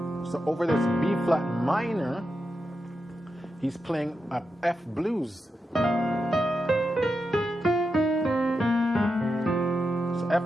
So over this B flat minor, he's playing a F blues. So F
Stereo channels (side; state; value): both; normal; correlation 0.87